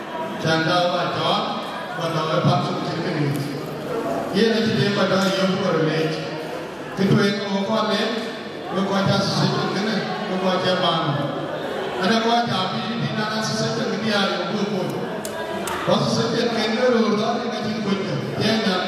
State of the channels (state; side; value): identical; both; correlation 1.00